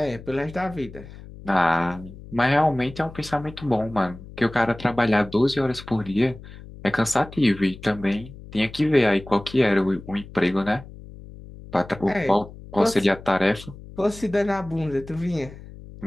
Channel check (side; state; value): left; noise; hum, 16 dB below the sound